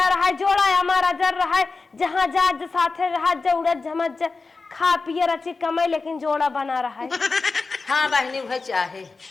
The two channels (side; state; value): right; quieter; 4.1 dB